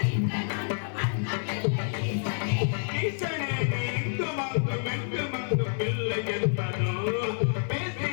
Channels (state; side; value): silent; right; 55 dB below the other